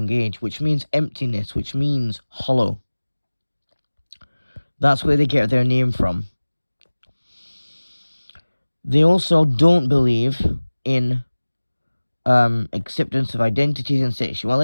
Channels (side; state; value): both; inverted; correlation -1.00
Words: age, which means emptiness, which means hollow. That's where they get their name from. They also don't believe in acceptance of identities and